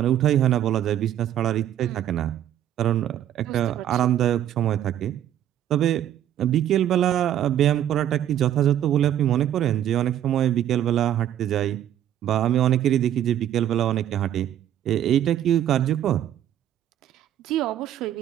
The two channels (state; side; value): quieter; left; 11.1 dB